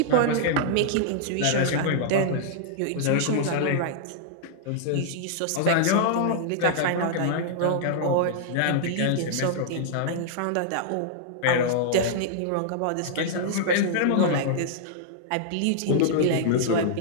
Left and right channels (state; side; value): different; both; correlation -0.01